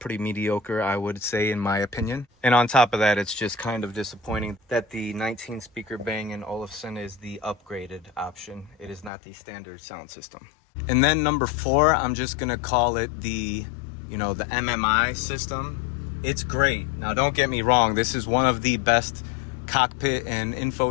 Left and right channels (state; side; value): drops out; right; at 9.1 s